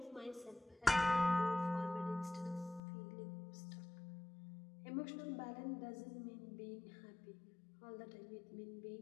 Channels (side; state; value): right; drops out; at 2.8 s